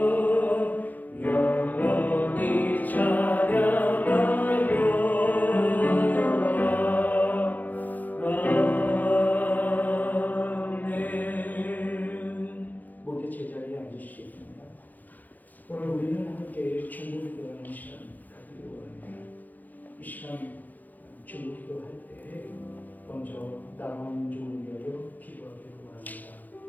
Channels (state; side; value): late; right; 0.083 ms